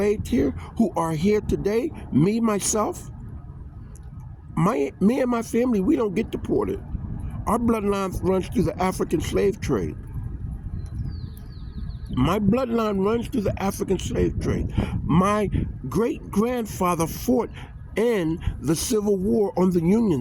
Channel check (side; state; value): both; identical; correlation 1.00